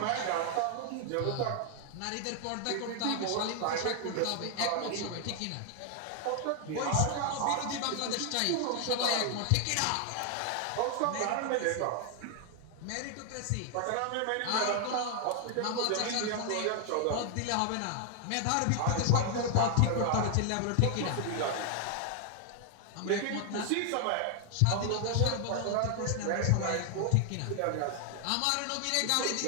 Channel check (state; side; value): different; both; correlation 0.00